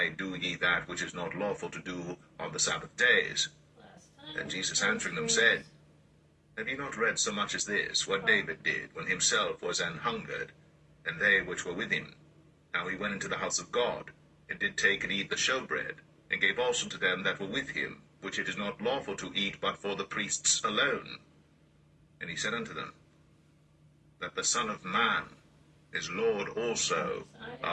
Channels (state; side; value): identical; both; correlation 1.00